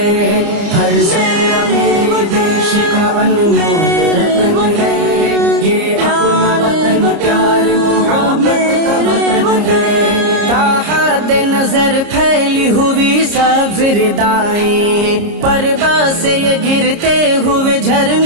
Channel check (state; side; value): late; left; 30 ms